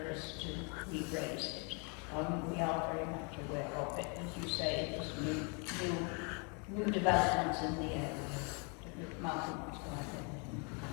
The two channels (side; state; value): right; quieter; 35.4 dB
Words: us to re-raise it. We are very much aware of it. As you say, there's new developments in the area. Martin wants to add anything.